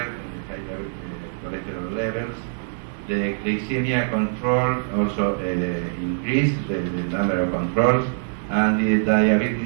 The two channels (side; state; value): left; silent; 63 dB below the other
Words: in the high cholesterol levels. The glycemia control also increased, the number of controls, and the